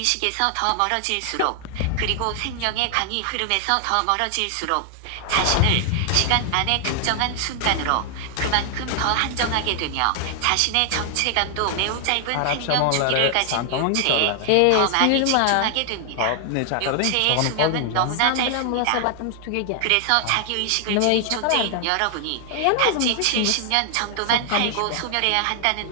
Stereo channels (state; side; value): different; both; correlation 0.00